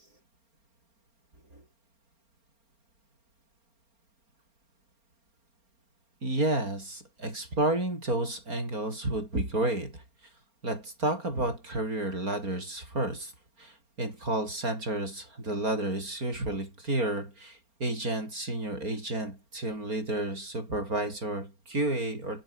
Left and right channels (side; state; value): left; late; 4.3 ms